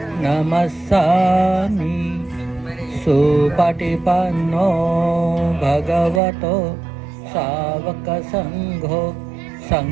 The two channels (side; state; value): left; drops out; at 6.2 s